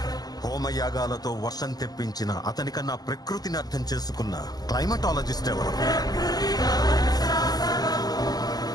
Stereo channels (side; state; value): right; late; 0.19 ms